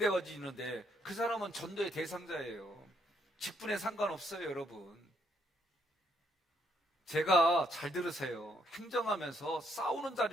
그 사람은 전도의 대상자예요. 직분에 상관없어요, 여러분. 제가 잘 들으세요. 행정하면서 싸우는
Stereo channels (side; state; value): both; normal; correlation 0.72